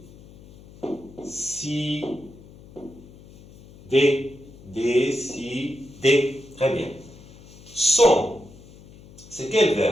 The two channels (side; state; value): left; noise; hum, 21 dB below the sound